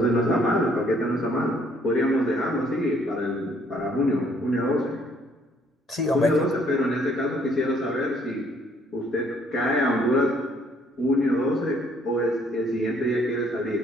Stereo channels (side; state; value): both; normal; correlation 0.64